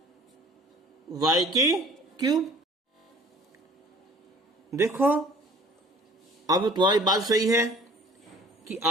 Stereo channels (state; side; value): normal; both; correlation 0.49